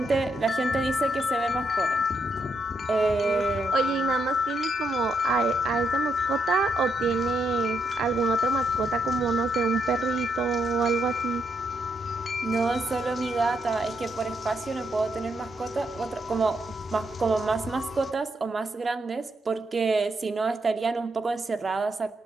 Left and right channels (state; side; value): normal; both; correlation 0.79